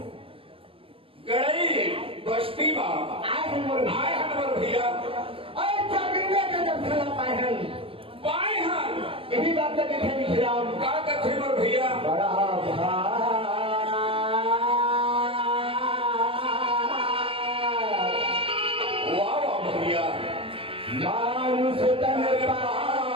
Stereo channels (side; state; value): left; late; 0.26 ms